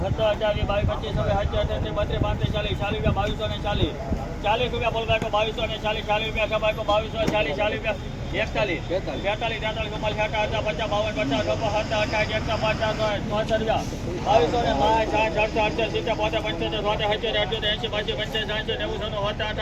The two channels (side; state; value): both; identical; correlation 1.00